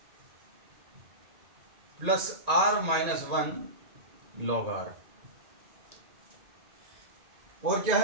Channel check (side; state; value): left; late; 1.9 ms